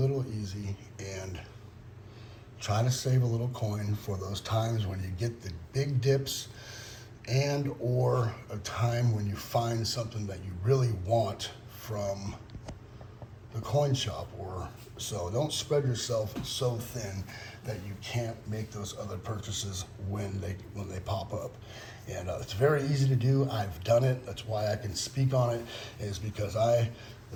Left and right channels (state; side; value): identical; both; correlation 1.00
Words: easy and try to save a little coin for those times when you get the big dips and or a time when you find something that you really want from the coin shop. Or so don't spread yourself so thin that you can't make those other purchases when they pop up. And it's very easy to do. I've done it. That's why I can speak on it, is because